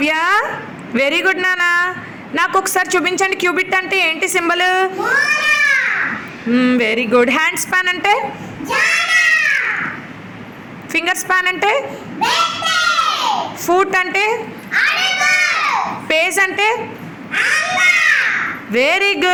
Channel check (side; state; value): both; identical; correlation 1.00